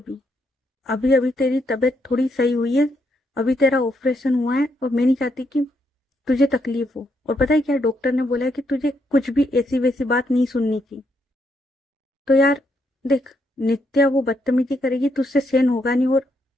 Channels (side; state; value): both; normal; correlation 0.77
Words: अभी अभी तेरी तबीयत थोड़ी सही हुई है, अभी तेरा ऑपरेशन हुआ है, और मैं नहीं चाहती कि तुझे तकलीफ हो। और पता है क्या, डॉक्टर ने बोला है कि तुझे कुछ भी ऐसी वैसी बात नहीं सुननी थी। तो यार देख, नित्या वो बदतमीजी करेगी, तुझसे सहन होगा नहीं, और